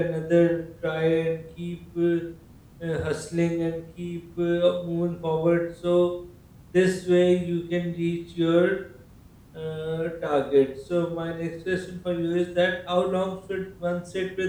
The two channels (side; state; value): both; identical; correlation 1.00